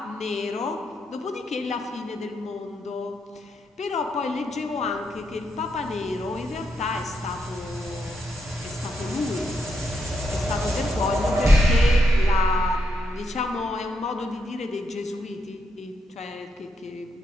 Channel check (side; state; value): both; normal; correlation 0.80